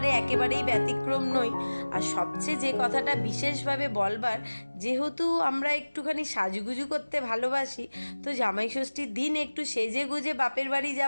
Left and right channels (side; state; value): both; inverted; correlation -1.00